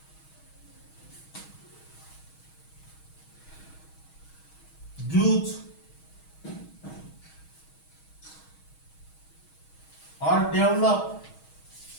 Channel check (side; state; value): right; late; 6.3 ms